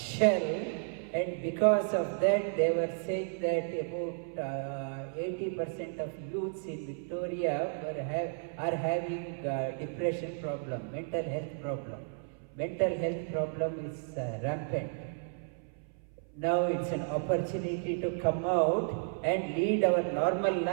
and because of that, they were saying that about 80% of youths in Victoria are having depression problem, mental health problem. Mental health problem is rampant. Now it's an opportunity to come out and lead our normal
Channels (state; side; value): silent; left; 56 dB below the other